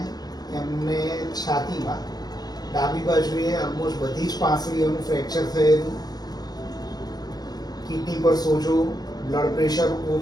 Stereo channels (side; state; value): right; late; 0.19 ms